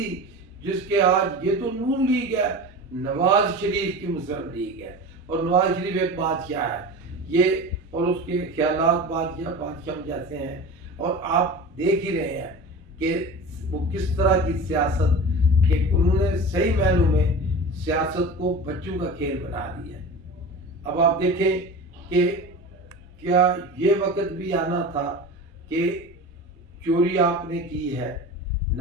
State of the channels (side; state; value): both; normal; correlation 0.32